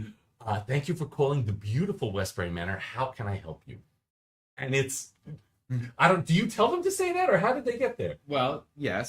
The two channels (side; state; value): both; identical; correlation 1.00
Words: Thank you for calling the beautiful Westbury Manor. How can I help you?" And it's, do you tell them to say that, or how did they get there? Well,